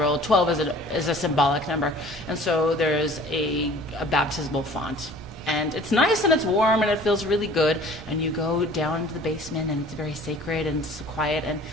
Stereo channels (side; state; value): right; noise; rumble, 16 dB below the sound